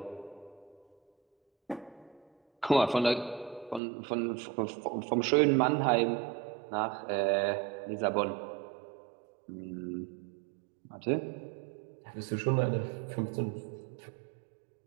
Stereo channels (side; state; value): left; drops out; at 3.8 s